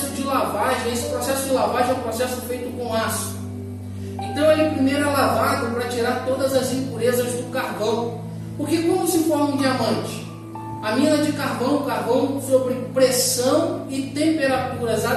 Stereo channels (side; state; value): both; identical; correlation 1.00